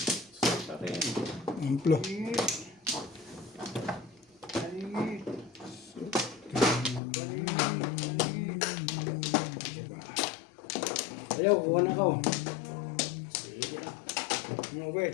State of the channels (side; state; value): right; drops out; at 7.0 s